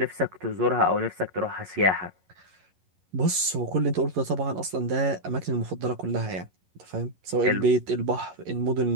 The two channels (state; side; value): late; left; 11 ms